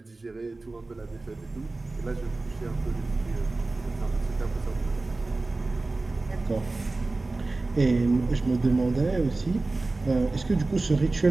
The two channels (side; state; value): left; quieter; 3.3 dB